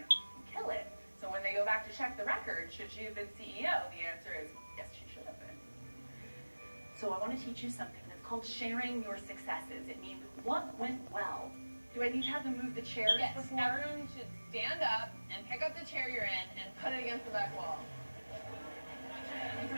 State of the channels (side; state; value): both; inverted; correlation -1.00